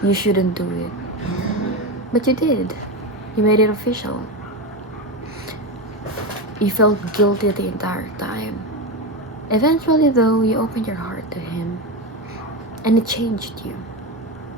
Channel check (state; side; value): normal; both; correlation 0.17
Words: you shouldn't do it. But you did. You made it official. You felt guilty the entire time. Eventually, though, you opened your heart to him, and it changed you.